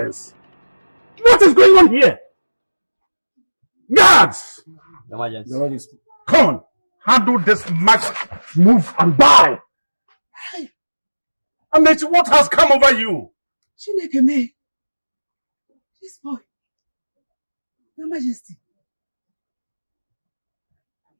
What is going on here? Guards! Your Majesty. Come on, handle this maggot. Move and die. Amechi, what has come over you? Chineke me. This boy. Your Majesty.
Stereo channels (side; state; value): both; inverted; correlation -1.00